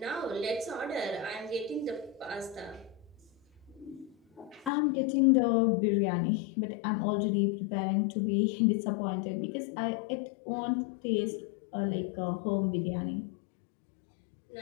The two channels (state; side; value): drops out; right; at 4.7 s